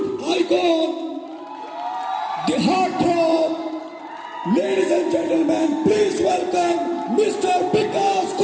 icon, the heartthrob. Ladies and gentlemen, please welcome Mr. Vikas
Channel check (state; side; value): identical; both; correlation 1.00